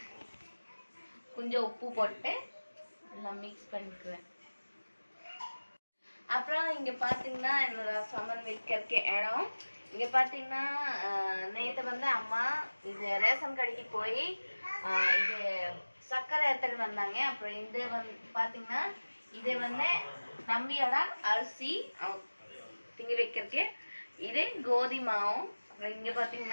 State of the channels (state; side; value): inverted; both; correlation -1.00